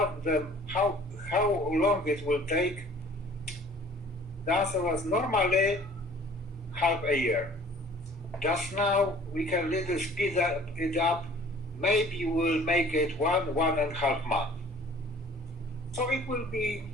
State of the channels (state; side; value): normal; both; correlation 0.51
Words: them how long it will take, the answer was normally half a year. Just now we can little speed it up. Maybe we'll make it 1.5 months. So it will be